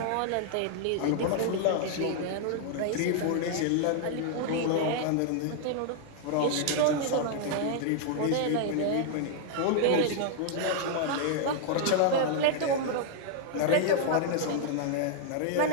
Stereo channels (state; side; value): different; both; correlation 0.00